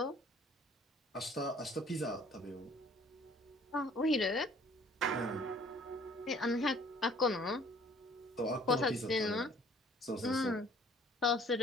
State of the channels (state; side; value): normal; both; correlation 0.55